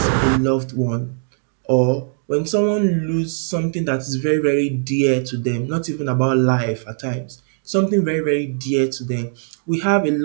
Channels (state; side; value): silent; left; digital silence